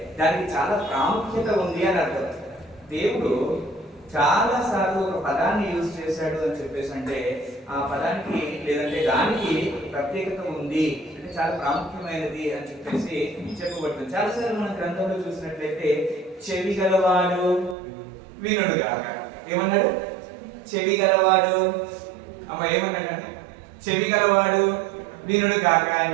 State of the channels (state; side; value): drops out; left; at 17.8 s